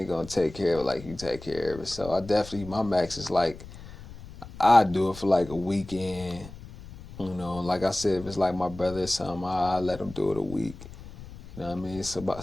gonna take care of it like you take care of it. So I definitely my max is like I do it for like a weekend. Like I said, if it's like my brother or something, I let him do it a week. You know what I mean?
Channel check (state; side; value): noise; left; rumble, 15 dB below the sound